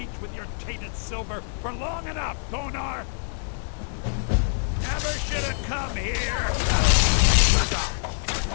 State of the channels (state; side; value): silent; right; digital silence